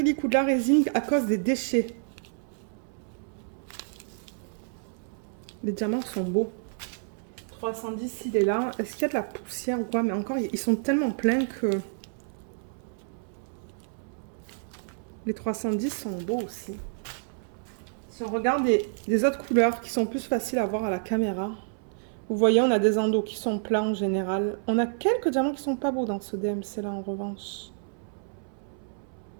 ou de la résine à cause des déchets. Les diamants sont beaux. 310, il est là. Est-ce qu'il y a de la poussière ou quoi? Mais encore, ils sont tellement pleins que... Les 310 sont beaux aussi. Si on regarde des autres couleurs qui sont plus faciles à voir à la caméra, vous voyez, on a des endos qui sont plats en général. On a quelques diamants qui sont pas beaux dans ce DMC là en revanche.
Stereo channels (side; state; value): left; silent; 59 dB below the other